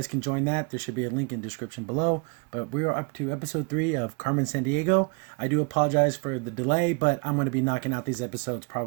can join that. There should be a link in the description below. But we are up to episode 3 of Carmen, Sandiego. I do apologize for the delay, but I'm going to be knocking out these episodes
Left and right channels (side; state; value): left; quieter; 33.2 dB